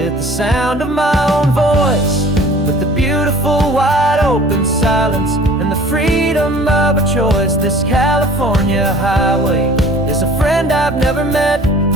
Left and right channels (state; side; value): normal; both; correlation 0.48